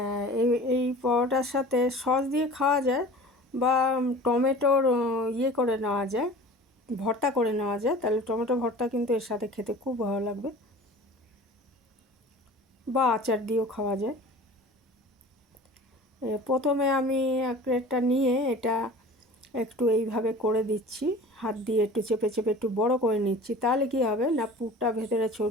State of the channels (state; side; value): normal; both; correlation 0.41